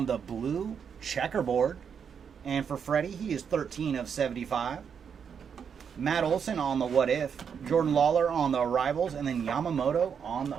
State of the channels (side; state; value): left; quieter; 7.1 dB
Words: the blue Checkerboard. And for Freddie, he is 13 of 75. Matt Olson on the What If. Jordan Lawler on the Arrivals. And then Yamamoto on